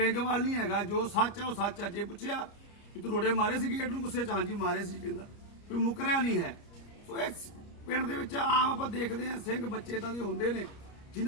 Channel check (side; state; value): right; late; 29 ms